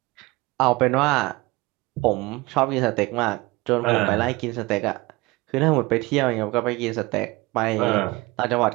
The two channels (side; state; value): left; quieter; 22.3 dB